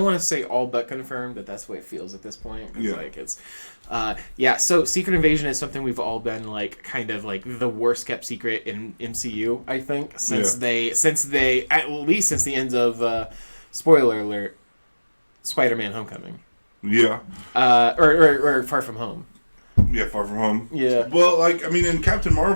want to say all but confirmed, but that's the way it feels at this point. So Secret Invasion is something we've all been kind of the worst kept secret in MCU. I think since they at least since the end of spoiler alert, Spider-Man: Homecoming. Yeah. Or Far From Home. Yeah, Far From Home. Yeah. Well, in Captain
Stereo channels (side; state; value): both; inverted; correlation -1.00